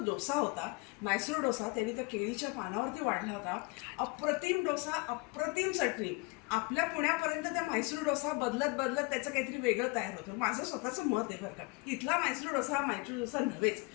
डोसा होता, म्हैसूर डोसा, त्यांनी त्या केळीच्या पानावरती वाढला होता. अप्रतिम डोसा, अप्रतिम चटणी. आपल्या पुण्यापर्यंत त्या म्हैसूर डोसा बदलत बदलत त्याचं काहीतरी वेगळं तयार होतं. माझं स्वतःचं मत आहे बरं का. इथला म्हैसूर डोसा हा म्हैसूर डोसा नव्हेच.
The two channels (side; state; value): right; quieter; 27.5 dB